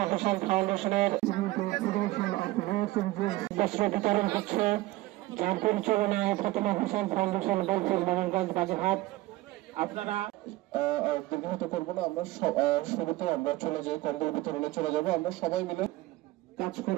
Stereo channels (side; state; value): left; quieter; 18.5 dB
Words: হোসেন ফাউন্ডেশনের বস্ত্র বিতরণ হচ্ছে, যার পরিচালনায় ফাতেমা হোসেন ফাউন্ডেশন বোলপুর মোহনগঞ্জ বাগেরহাট। আপনারা দীর্ঘায়িত করবো না, আমরা শুরুতে আমরা চলে যাই, কম্বল বিতরণে চলে যাবো আমরা সবাই মিলে কাজ